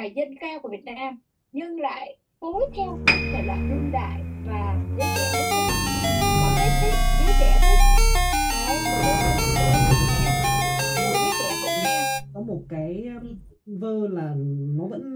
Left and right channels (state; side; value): identical; both; correlation 1.00